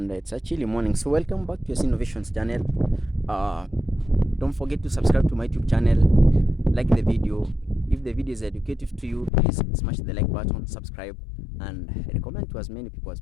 it's a chilly morning. So welcome back to your Innovations channel. Don't forget to subscribe to my YouTube channel, like the video. If the video is educative to you, please smash the like button, subscribe, and recommend to as many people as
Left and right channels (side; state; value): right; drops out; at 9.3 s